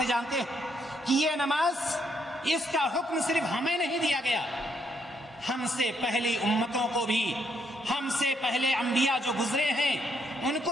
جانتے ہیں کہ یہ نماز، اس کا حکم صرف ہمیں نہیں دیا گیا، ہم سے پہلی امتوں کو بھی، ہم سے پہلے انبیاء جو گزرے ہیں ان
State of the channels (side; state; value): both; normal; correlation 0.73